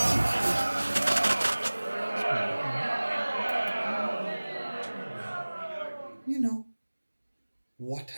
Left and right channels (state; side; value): inverted; both; correlation -1.00